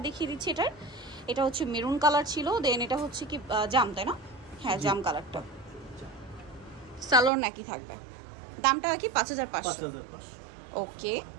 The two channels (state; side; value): drops out; left; at 7.3 s